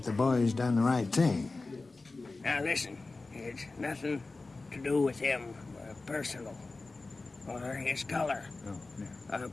the boys done the right thing. Now listen, it's nothing to do with him personal or his color. Oh, yeah. A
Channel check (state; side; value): quieter; right; 3.5 dB